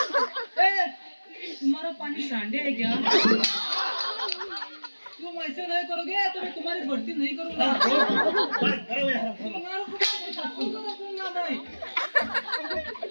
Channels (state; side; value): inverted; both; correlation -1.00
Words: ए, तुम्हारा पानी सांडे है क्या? तुम ऐसे नहीं करोगे तो मैं तुम्हारी भर्ती नहीं करूंगा. काय खरं आहे हरामखोर. तुम्हारा को रखूंगा मैं.